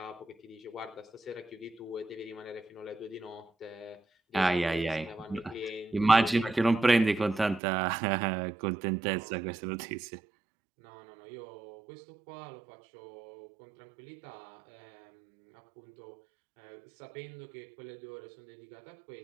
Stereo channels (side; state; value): left; drops out; at 7.6 s